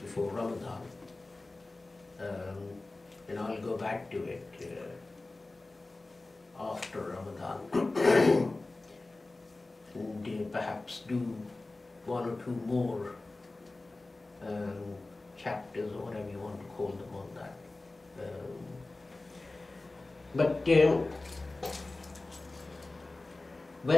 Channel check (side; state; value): right; quieter; 3.1 dB